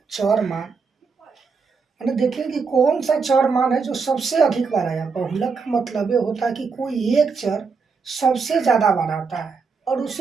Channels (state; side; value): quieter; left; 5.1 dB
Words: चर मान। मैंने देखिए कि कौन सा चर मान है जो सबसे अधिक बार आया। बहुलक का मतलब ये होता है कि कोई एक चर सबसे ज़्यादा बार आता है और